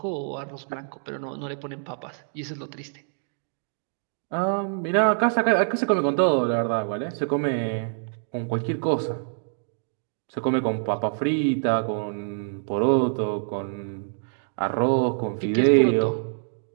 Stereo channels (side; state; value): left; silent; digital silence